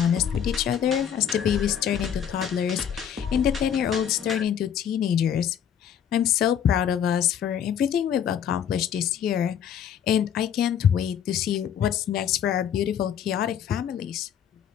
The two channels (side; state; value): right; quieter; 8.9 dB